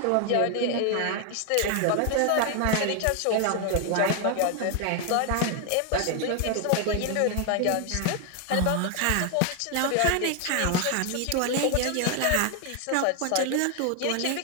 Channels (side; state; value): both; different; correlation 0.01